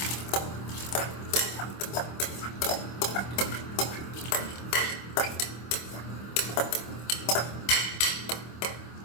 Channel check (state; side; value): late; right; 25 ms